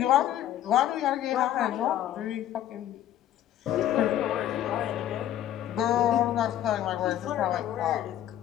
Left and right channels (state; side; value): quieter; right; 11.9 dB